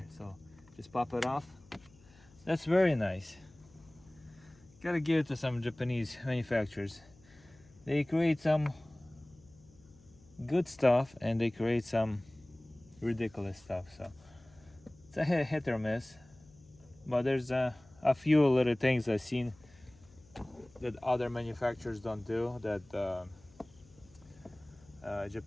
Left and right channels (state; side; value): noise; left; hum, 26 dB below the sound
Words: so just pop it off. That's very nice. Gotta give it to some Japanese manufacturers. They create some good stuff and they create some ridiculous stuff. So it's a hit or miss, but there's a few little things I've seen that other manufacturers don't do that